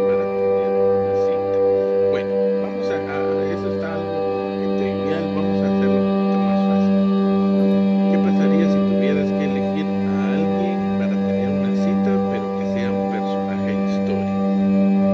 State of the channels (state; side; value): identical; both; correlation 1.00